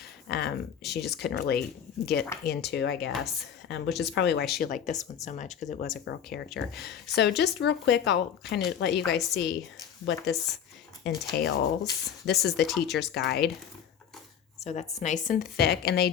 she just couldn't really get into, I guess, which is probably why she liked this one so much, because it was a girl character. So just real quick, I'll kind of let you guys see what this entails. This is the teacher's guide. So that's nice and thick. And they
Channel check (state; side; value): quieter; right; 8.5 dB